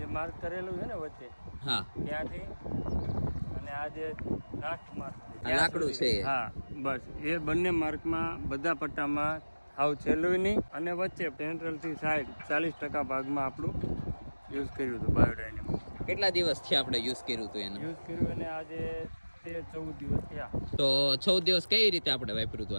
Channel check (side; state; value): both; inverted; correlation -1.00